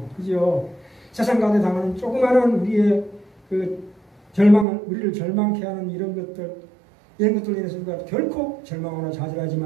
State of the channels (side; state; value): left; drops out; at 4.7 s